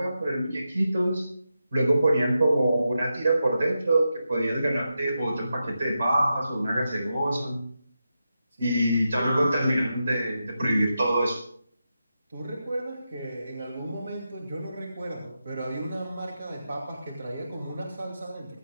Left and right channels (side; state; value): both; inverted; correlation -0.88